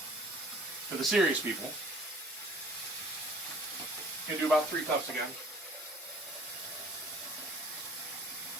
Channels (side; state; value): both; normal; correlation 0.52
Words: For the serious people, you can do about 3 cups again.